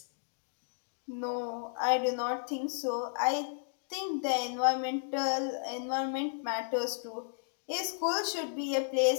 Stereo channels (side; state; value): right; silent; digital silence